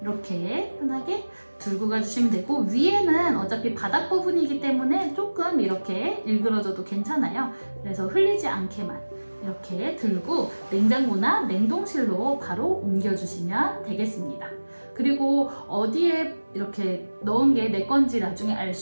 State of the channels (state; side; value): inverted; both; correlation -1.00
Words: 이렇게 편하게 들고 가주시면 되고 위에는 어차피 바닥 부분이기 때문에 조금 이렇게 일그러져도 괜찮아요. 그래서 흘리지 않게만 이렇게 들고 냉장고나 냉동실로 바로 옮겨주시면 되겠습니다. 그리고 어디에 이렇게 넣은 게 내 건지 나중에 알